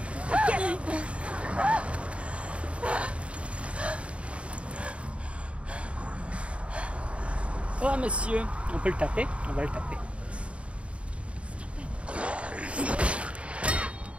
Oh monsieur, on peut le taper, on va le taper.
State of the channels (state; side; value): late; left; 0.061 ms